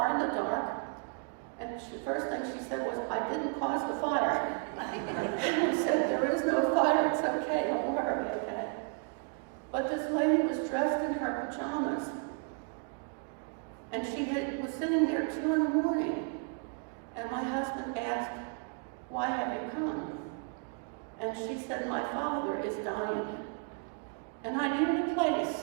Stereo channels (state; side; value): quieter; left; 39.9 dB